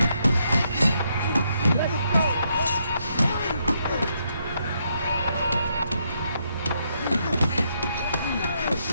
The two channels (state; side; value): inverted; both; correlation -0.76